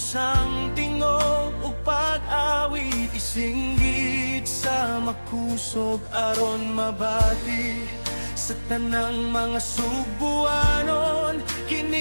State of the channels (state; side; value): inverted; both; correlation -1.00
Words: tingog ug pag-awit, isinggit sa makusog aron mabati. Sa tanang mga subuanon,